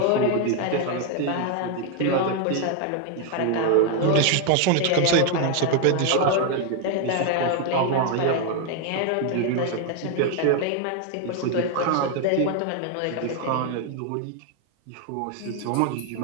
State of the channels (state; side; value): different; both; correlation 0.01